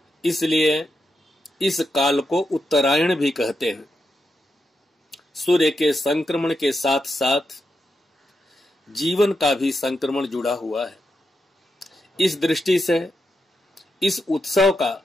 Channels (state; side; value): normal; both; correlation 0.85